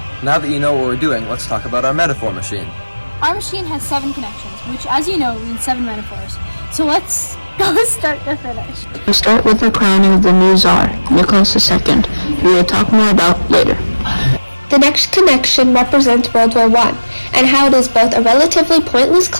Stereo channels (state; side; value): inverted; both; correlation -1.00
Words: Now that you know what we're doing, let's talk about our metaphor machine. Our machine has 7 connections, which, as you know, means 7 metaphors. So let's go start to finish. We start with the crowning of the new Tsar, Nicholas II, who we'll talk more about later. The next connection represents World War I, and how it is both a relatively pointless